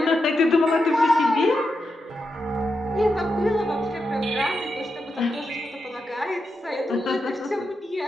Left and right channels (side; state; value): both; normal; correlation 0.86